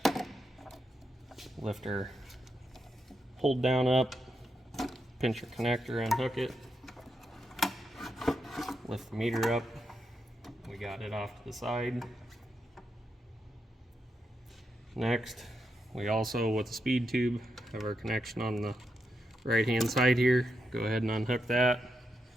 lift our hold down up, pinch your connector, unhook it, lift the meter up. We got it off to the side. Next, we also, with the speed tube, have our connection on the right hand side here. Go ahead and unhook that.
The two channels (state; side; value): normal; both; correlation 0.84